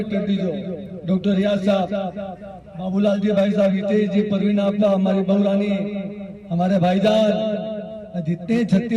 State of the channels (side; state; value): both; identical; correlation 1.00